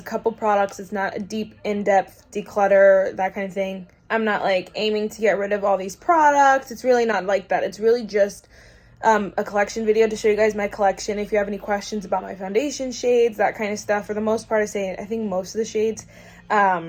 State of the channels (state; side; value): identical; both; correlation 1.00